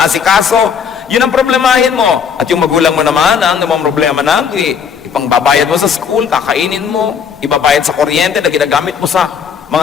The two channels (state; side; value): quieter; right; 6.9 dB